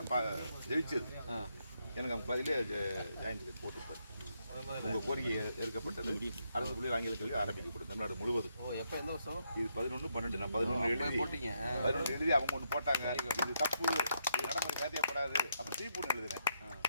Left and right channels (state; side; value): inverted; both; correlation -0.78